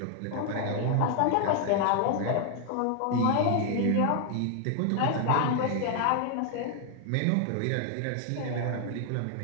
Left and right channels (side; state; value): both; different; correlation 0.00